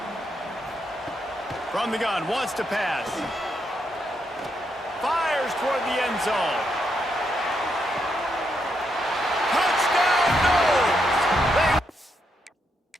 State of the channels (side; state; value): both; normal; correlation 0.80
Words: From the gun, wants to pass. Fires toward the end zone. Touchdown, Noles!